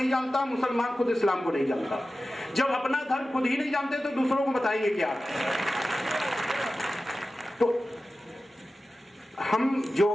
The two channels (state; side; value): normal; both; correlation 0.94